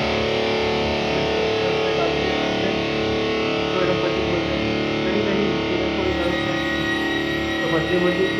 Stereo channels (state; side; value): identical; both; correlation 1.00